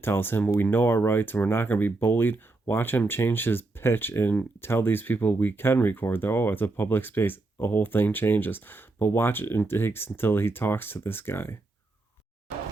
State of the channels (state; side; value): quieter; left; 3.2 dB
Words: tells him we know our rights and we're not going to be bullied, watch him change his pitch and tell these people we can record. Oh, it's a public space. The whole thing changes. But watch it, and it takes until he talks to this guy.